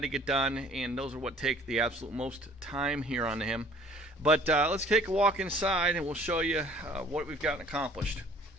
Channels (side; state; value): both; normal; correlation 0.53